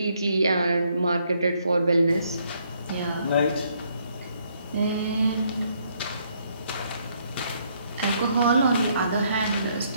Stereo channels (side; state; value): both; inverted; correlation -0.70